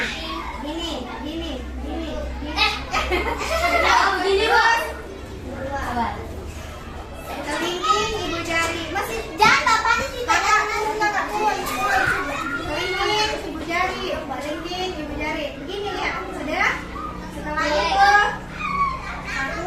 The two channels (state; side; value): identical; both; correlation 1.00